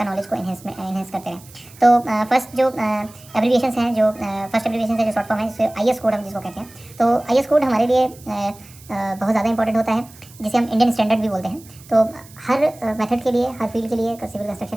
नॉलेज को इन्हेंस करते रहें। तो फर्स्ट जो एब्रीविएशंस हैं, जो फर्स्ट एब्रीविएशन है, जो शॉर्ट फॉर्म है, जिसे IS कोड हम जिसको कहते हैं। तो IS कोड हमारे लिए बहुत ज़्यादा इंपॉर्टेंट होता है, जिसे हम इंडियन स्टैंडर्ड भी बोलते हैं। तो हर मेथड के लिए, हर फील्ड के लिए, सिविल कंस्ट्रक्शन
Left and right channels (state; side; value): noise; right; hiss, 23 dB below the sound